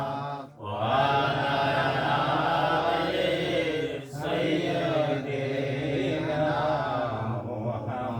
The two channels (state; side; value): identical; both; correlation 1.00